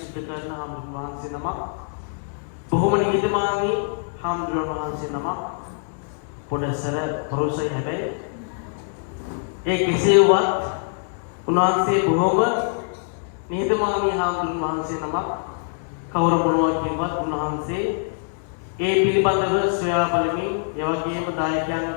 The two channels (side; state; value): right; silent; 63 dB below the other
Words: කරන හාමුදුරුවෝ වහන්සේ නමක්. බොහොම නිහතමානී හාමුදුරුවෝ වහන්සේ නමක්. පොඩසර පරුසයි හැබැයි ඒ කෙසේවත් උන්වහන්සේ බොහොම නිහතමානී හාමුදුරුවෝ වහන්සේ නමක්. කවුරු මොනවා කියවත් උන්වහන්සේ ඒ පිළිබඳව සොයා බලමින් ඒ වගේම